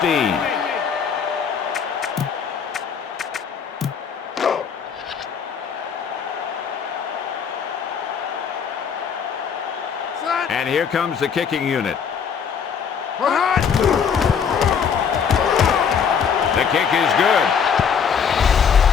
And here comes the kicking unit. The kick is good.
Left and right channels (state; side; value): quieter; right; 6.9 dB